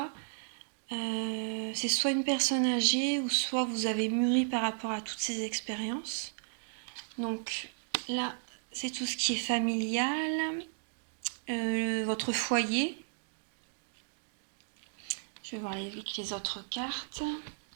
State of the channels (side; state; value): left; silent; digital silence